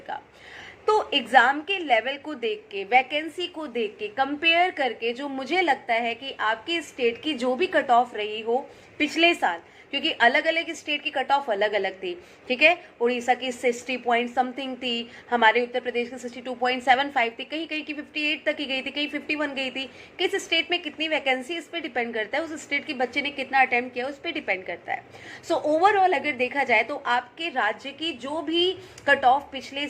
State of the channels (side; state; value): both; identical; correlation 1.00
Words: का। तो एग्ज़ाम के लेवल को देख के, वैकेंसी को देख के, कंपेयर करके जो मुझे लगता है कि आपकी स्टेट की जो भी कट ऑफ रही हो पिछले साल, क्योंकि अलग अलग स्टेट की कट ऑफ अलग अलग थी, ठीक है, उड़ीसा की 60 पॉइंट समथिंग थी, हमारे उत्तर प्रदेश की 62.75 थी, कहीं कहीं की 58 तक ही गई थी, कहीं 51 गई थी। किस स्टेट में कितनी वैकेंसी, इस पर डिपेंड करता है, उस स्टेट के बच्चे ने कितना अटेम्प्ट किया उस पर डिपेंड करता है। सो ओवरऑल अगर देखा जाए तो आपके राज्य की जो भी कट ऑफ पिछले